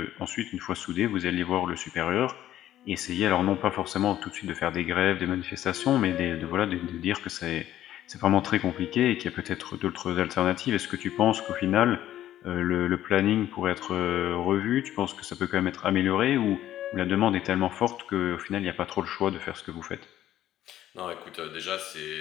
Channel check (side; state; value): right; quieter; 12.7 dB